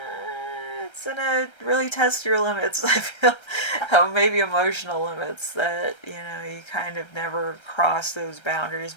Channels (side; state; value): right; late; 1.3 ms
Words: gonna really test your limits. I feel maybe emotional limits that you kind of never crossed those boundaries